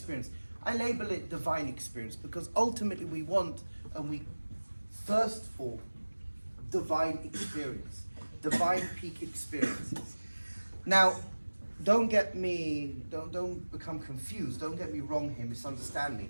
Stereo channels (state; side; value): inverted; both; correlation -1.00